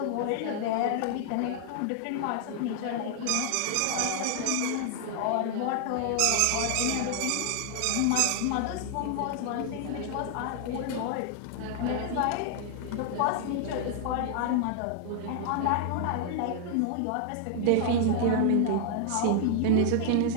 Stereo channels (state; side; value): different; both; correlation 0.00